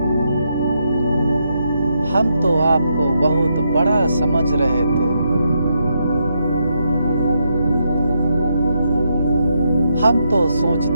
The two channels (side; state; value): both; inverted; correlation -0.80